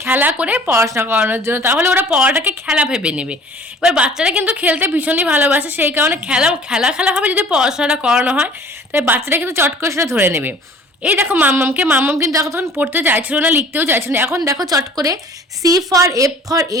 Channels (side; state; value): both; normal; correlation 0.49